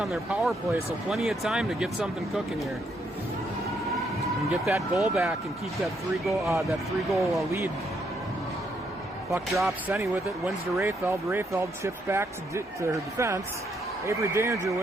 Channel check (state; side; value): normal; both; correlation 0.74